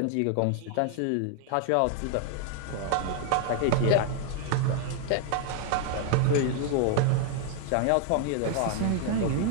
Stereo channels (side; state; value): both; different; correlation 0.00